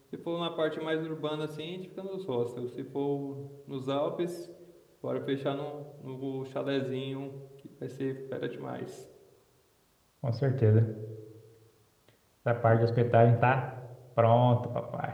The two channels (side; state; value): both; identical; correlation 1.00